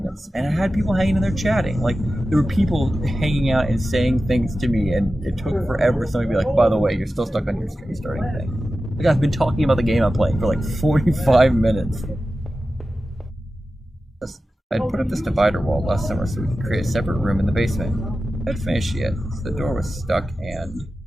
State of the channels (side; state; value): both; normal; correlation 0.94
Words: And I had people hanging in there chatting. Like, there were people hanging out and saying things to me, and it took forever for somebody to be like, by the way, you're still stuck on your stream starting thing. Like, I've been talking about the game I'm playing for, like, 45 minutes. I'd put up this divider wall last summer so we could create a separate room in the basement. I'd finished yet, so the door was stuck and the